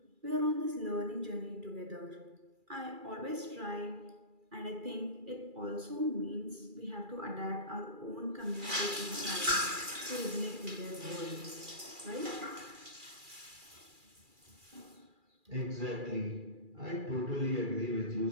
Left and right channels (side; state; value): left; late; 2.4 ms